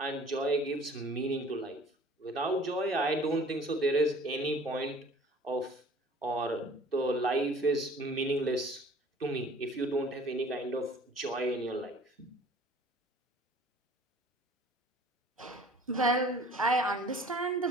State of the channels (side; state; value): both; normal; correlation 0.50